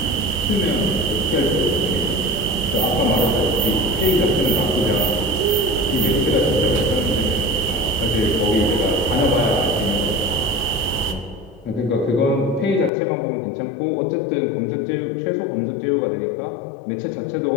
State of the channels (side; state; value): right; drops out; at 12.9 s